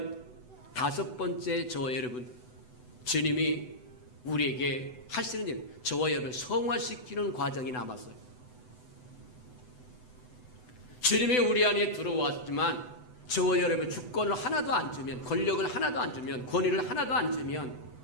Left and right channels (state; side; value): late; right; 8.0 ms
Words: 다섯 번째 저와 여러분, 주님이 우리에게 하시는 일, 저와 여러분을 성화시키는 과정이 남았어요. 주님이 우리 안에 들어왔지만 저와 여러분 주권을 하나도 안 주면, 권력을 하나도 안 주면, 권위를 하나도 안 주면